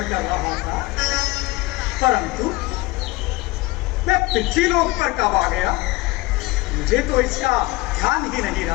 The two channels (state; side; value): quieter; right; 21.1 dB